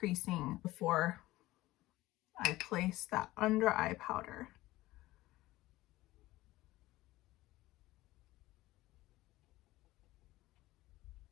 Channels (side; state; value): right; quieter; 17.6 dB